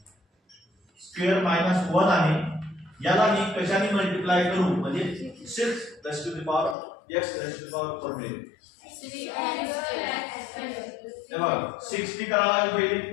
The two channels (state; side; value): drops out; right; at 6.8 s